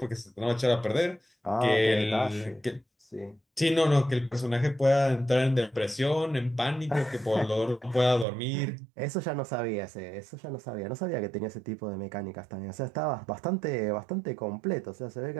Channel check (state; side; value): drops out; left; at 8.2 s